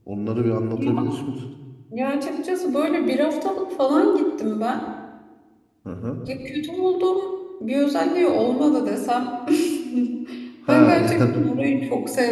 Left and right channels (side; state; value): both; identical; correlation 1.00